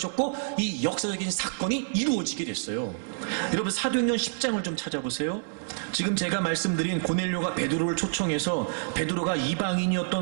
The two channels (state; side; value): silent; left; 60 dB below the other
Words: 이 역사적인 사건이 이루어지게 됐어요. 여러분 사도행전 10장을 좀 찾아보세요. 지금 제가 말씀드린 고넬료가 베드로를 초청해서 베드로가